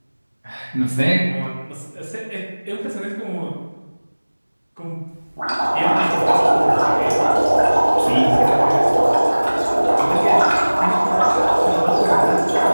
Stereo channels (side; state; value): both; inverted; correlation -1.00